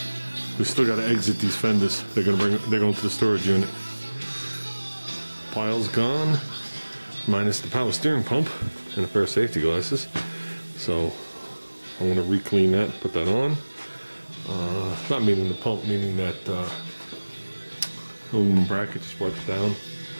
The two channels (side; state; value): both; inverted; correlation -1.00